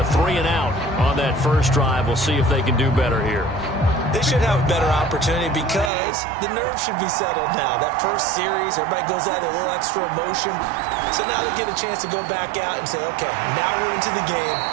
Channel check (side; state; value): left; drops out; at 5.9 s